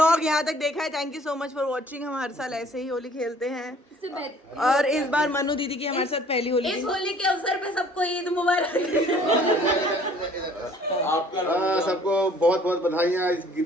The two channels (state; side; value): normal; both; correlation 0.55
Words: यहाँ तक देखा है, thank you so much for watching. हम हर साल ऐसे ही होली खेलते हैं और इस बार मनु दीदी की हमारे साथ पहली होली इस होली के अवसर पे सबको ईद मुबारक। सबको बहुत बहुत बधाइयाँ इस